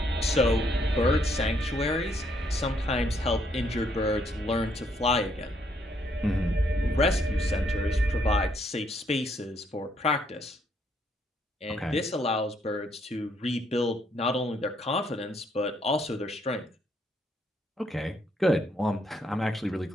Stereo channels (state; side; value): normal; both; correlation 0.71